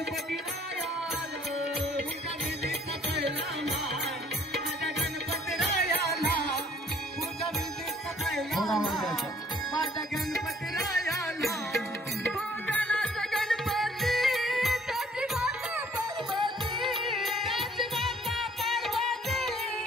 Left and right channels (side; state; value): both; normal; correlation 0.59